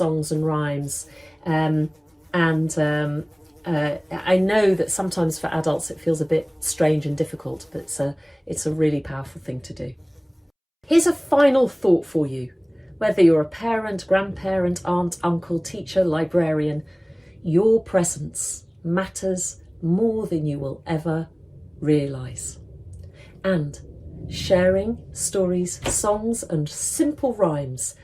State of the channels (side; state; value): both; identical; correlation 1.00